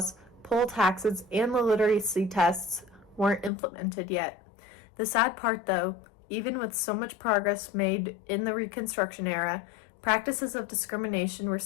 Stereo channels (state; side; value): drops out; right; at 3.5 s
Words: poll taxes, and the literacy tests weren't implemented yet. The sad part, though, even with so much progress made in the Reconstruction era, practices of discrimination were